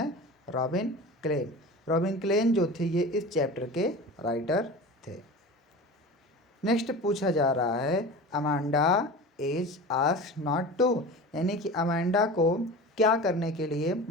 Robin Klein. रॉबिन क्लेन जो थे ये इस चैप्टर के राइटर थे। नेक्स्ट पूछा जा रहा है Amanda is asked not to, यानी कि अमांडा को क्या करने के लिए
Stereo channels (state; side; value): normal; both; correlation 0.34